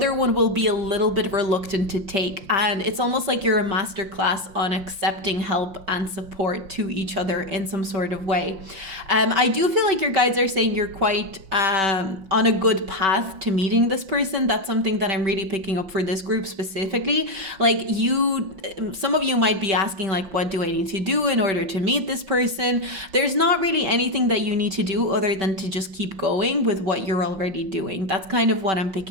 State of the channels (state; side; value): late; left; 5.5 ms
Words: one will be a little bit reluctant to take. And it's almost like you're a master class on accepting help and support to each other in some sort of way. I do feel like your guides are saying you're quite on a good path to meeting this person. That's something that I'm really picking up for this group specifically. Like, some of you might be asking, like, what do I need to do in order to meet this person? There's not really anything that you need to do other than to just keep going with what you're already doing. That's kind of what I'm